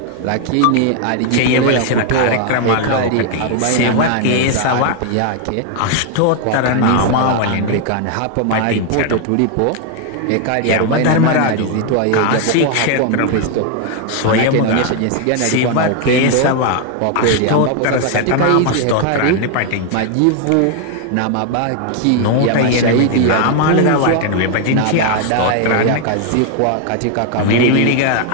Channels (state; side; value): different; both; correlation 0.00